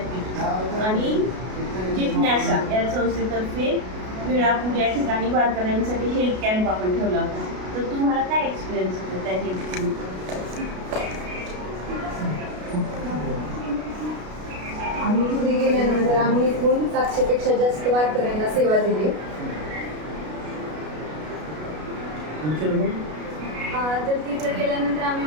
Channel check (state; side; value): late; left; 33 ms